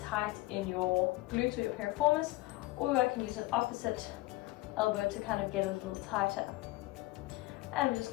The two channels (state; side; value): quieter; right; 19.5 dB